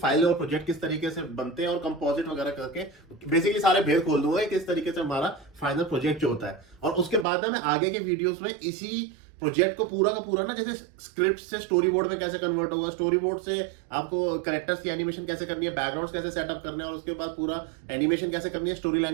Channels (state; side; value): drops out; left; at 7.2 s